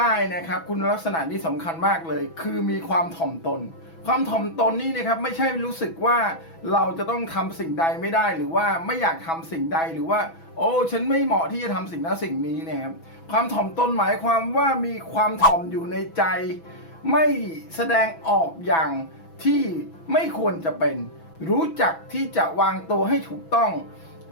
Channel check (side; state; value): right; late; 6.1 ms